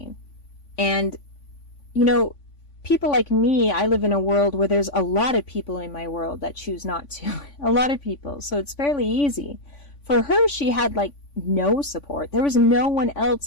And, you know, people like me, I live in a world where there's a lot of people in my world that choose not to. A lot of people. So it's fairly easy. For her, she had like no support. There was no one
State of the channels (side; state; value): right; late; 3.5 ms